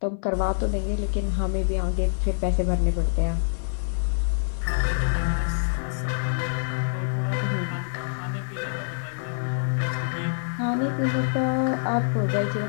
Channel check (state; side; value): silent; right; 61 dB below the other